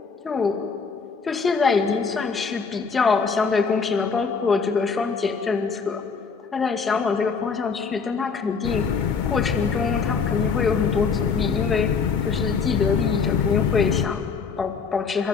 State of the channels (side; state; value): right; quieter; 5.4 dB